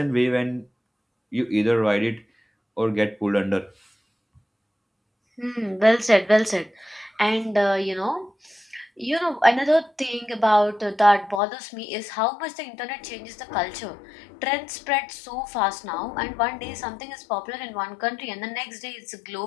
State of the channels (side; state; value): right; drops out; at 11.4 s